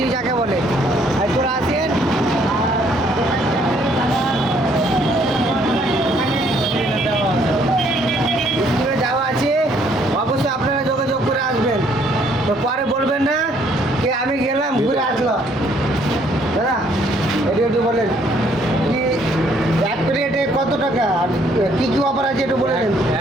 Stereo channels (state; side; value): normal; both; correlation 0.66